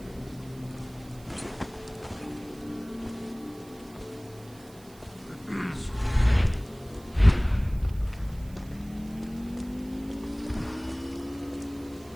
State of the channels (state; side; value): noise; right; hiss, 24 dB below the sound